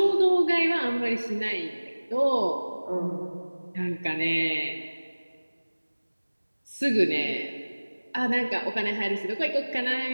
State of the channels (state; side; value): inverted; both; correlation -1.00